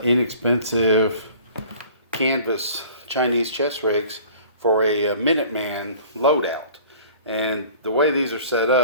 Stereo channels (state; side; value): inverted; both; correlation -0.47